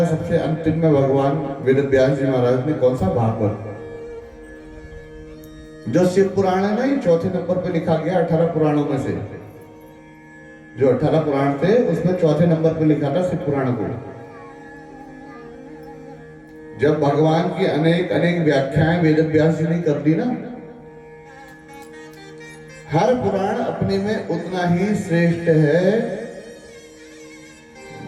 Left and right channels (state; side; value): identical; both; correlation 1.00